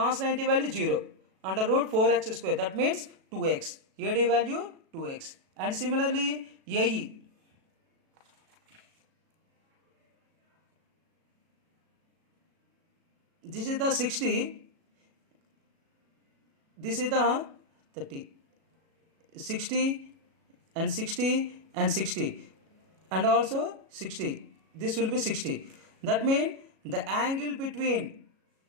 90 value 0. Under root 4x square. That means 2x. AD value 2x. And similarly AE. This is the 60. This is the 30. 60 and 60 and 60 and also 60. This will be 60. That means the angle between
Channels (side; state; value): left; late; 37 ms